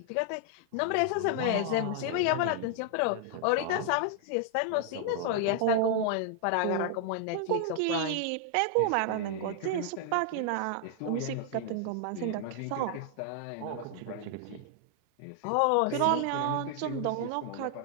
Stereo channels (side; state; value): both; different; correlation 0.00